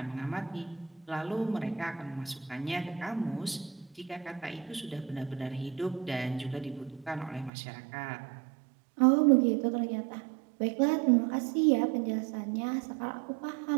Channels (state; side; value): drops out; left; at 7.5 s